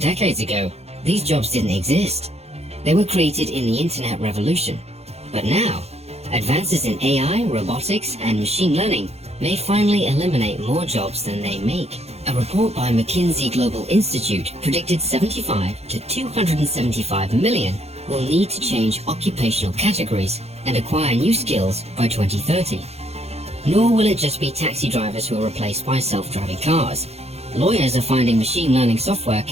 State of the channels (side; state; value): left; late; 0.30 ms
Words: ago, these jobs didn't exist. They were created in the internet revolution. But now, advances in AI, robotics, and machine learning may finally eliminate more jobs than they make. A report by McKinsey Global Institute predicted 75 to 275 million will need to change occupational categories and acquire new skills by 2030. Nor will it just be taxi drivers who are replaced by self-driving cars. Lawyers are finding machine learning software